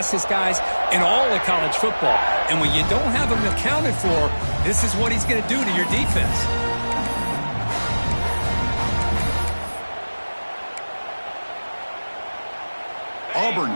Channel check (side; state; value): both; inverted; correlation -1.00